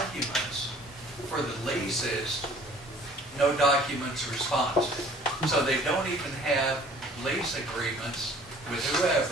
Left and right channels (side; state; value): both; normal; correlation 0.52